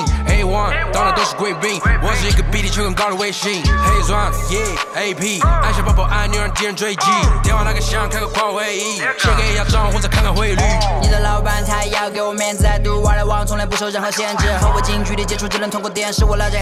黑王，到哪都是贵宾。我是一个比地球更高的卫星。黑钻，AP，按下抱抱按钮让敌人追击。电话那个响，开个跨会议，写给亚账或者看看汇率。你的老板他要给我面子，I do what I want，从来不受任何限制。和我近距离接触只能通过电视，我拉着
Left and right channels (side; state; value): both; identical; correlation 1.00